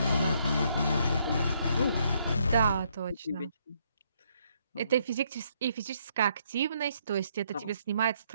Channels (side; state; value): both; inverted; correlation -0.71